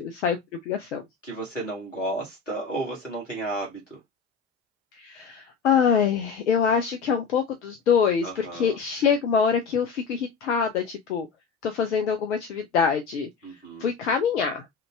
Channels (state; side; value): quieter; right; 5.7 dB